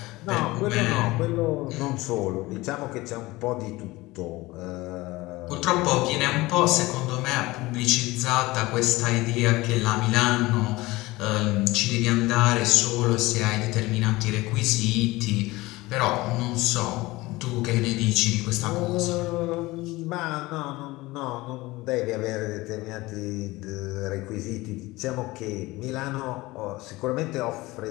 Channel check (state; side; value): quieter; right; 20.3 dB